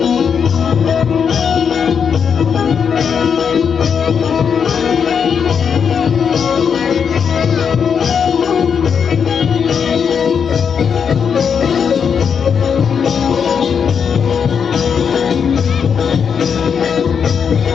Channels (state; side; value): quieter; right; 6.9 dB